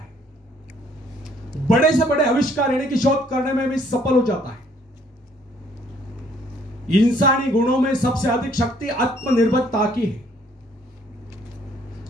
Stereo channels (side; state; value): both; normal; correlation 0.63